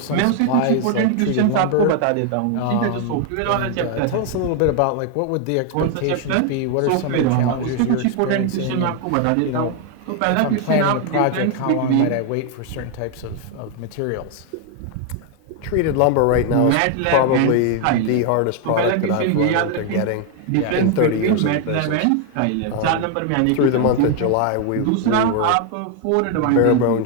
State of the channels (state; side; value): different; both; correlation 0.01